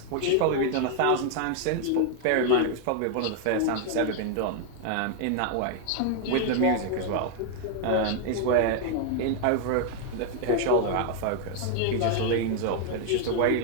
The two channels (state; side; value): different; both; correlation 0.00